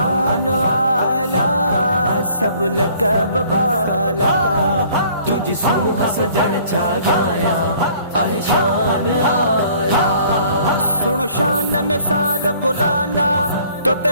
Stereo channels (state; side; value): inverted; both; correlation -0.56